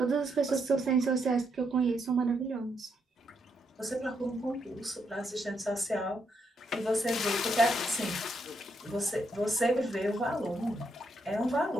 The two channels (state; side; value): normal; both; correlation 0.78